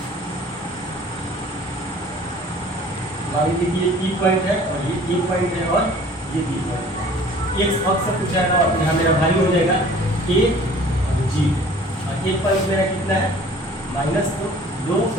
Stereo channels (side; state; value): both; normal; correlation 0.49